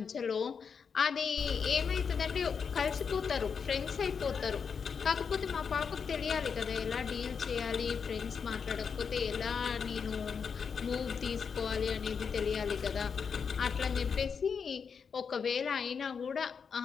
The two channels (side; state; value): right; quieter; 6.2 dB